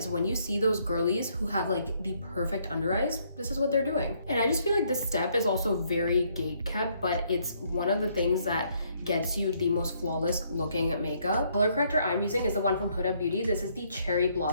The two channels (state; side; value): inverted; both; correlation -0.69